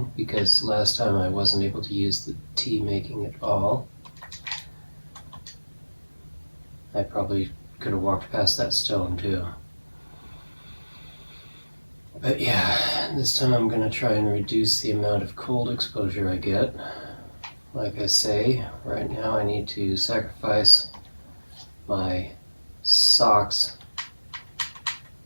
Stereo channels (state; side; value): inverted; both; correlation -1.00